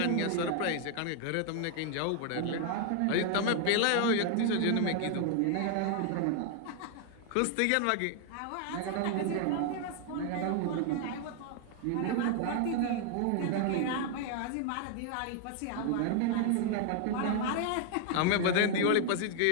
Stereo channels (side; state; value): both; different; correlation 0.00